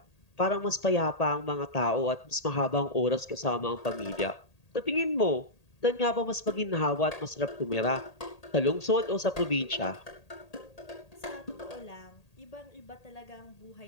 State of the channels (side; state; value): right; late; 1.8 ms